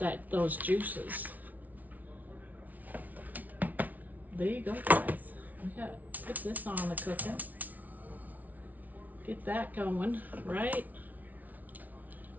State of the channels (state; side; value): late; left; 0.076 ms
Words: those juices. There you go, guys. We got to put this on the cooking. Get that going, right?